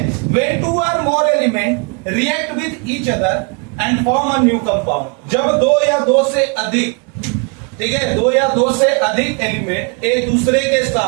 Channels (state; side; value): quieter; left; 34.9 dB